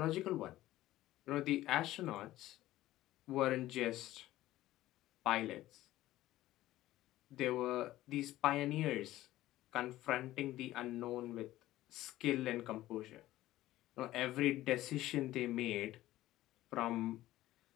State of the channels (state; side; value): quieter; right; 15.5 dB